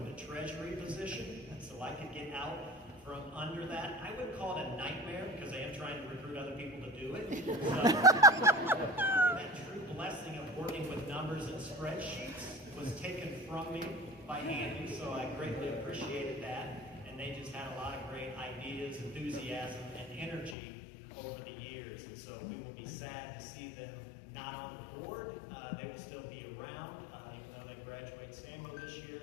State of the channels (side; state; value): right; drops out; at 20.6 s